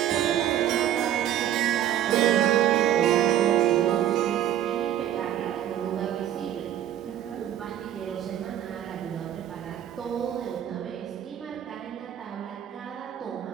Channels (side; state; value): left; quieter; 11.2 dB